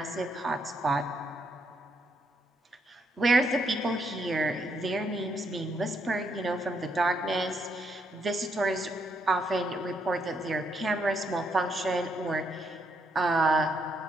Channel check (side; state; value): both; normal; correlation 0.75